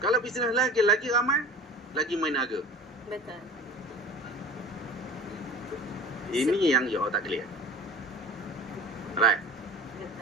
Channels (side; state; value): both; normal; correlation 0.39